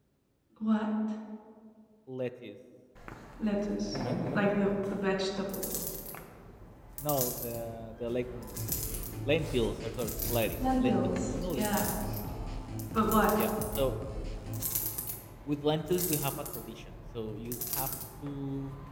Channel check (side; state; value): both; identical; correlation 1.00